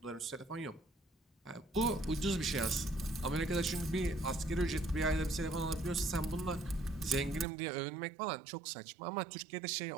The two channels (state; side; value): drops out; left; at 7.5 s